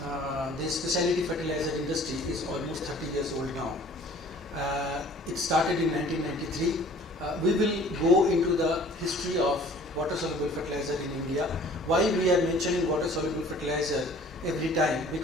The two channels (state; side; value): normal; both; correlation 0.51